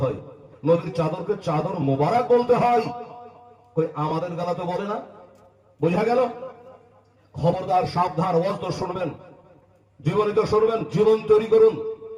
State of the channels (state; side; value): identical; both; correlation 1.00